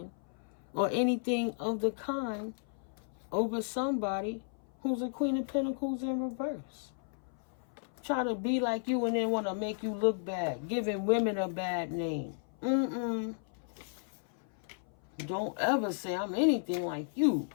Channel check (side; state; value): right; silent; 55 dB below the other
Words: or anything of the kind over somebody who's a Queen of Pentacles in reverse? Try to be like you and then want to make you look bad, giving women a bad name. Don't ever say I'm anything like you.